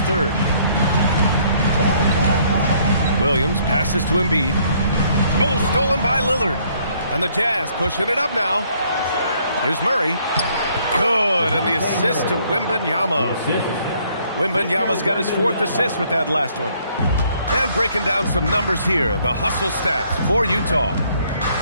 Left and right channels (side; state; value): both; inverted; correlation -0.65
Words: third. Williams passes to Embiid. Oh, stolen by Lillard. And the Jazz pushing it up now. Here's Murray. Good, and the assist to Wembanyama. Wembanyama's got his 4th assist with that last one. And breaking down some numbers here, the hustle stats for Utah.